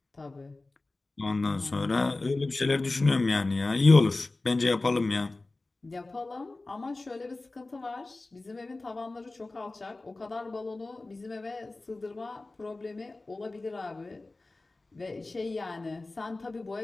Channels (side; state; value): right; quieter; 3.2 dB